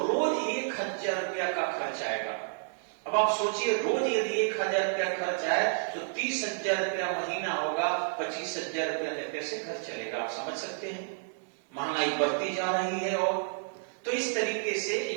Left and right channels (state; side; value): silent; left; 57 dB below the other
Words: 1,000 रुपया का खर्च आएगा। अब आप सोचिए, रोज यदि 1,000 रुपया खर्च आए तो 30,000 रुपया महीना होगा। 25,000 रुपया में कैसे घर चलेगा? आप समझ सकते हैं, महंगाई बढ़ती जा रही है। और तो इस तरीके से